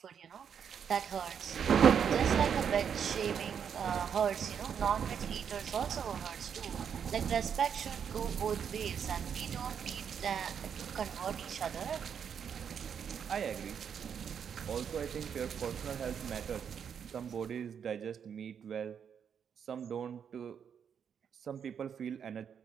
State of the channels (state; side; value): quieter; left; 7.7 dB